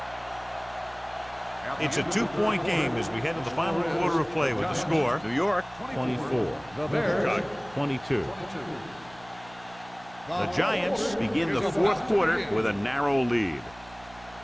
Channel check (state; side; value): noise; right; hum, 23 dB below the sound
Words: It's a 2-point game as we head to the final quarter of play with the score. New York, 24. Chicago, 22. The Giants begin the 4th quarter with a narrow lead.